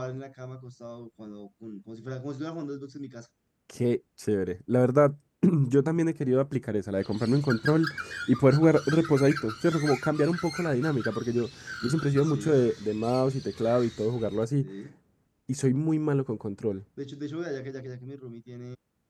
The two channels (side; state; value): both; identical; correlation 1.00